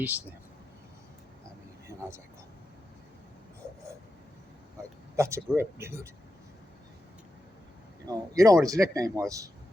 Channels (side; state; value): both; normal; correlation 0.89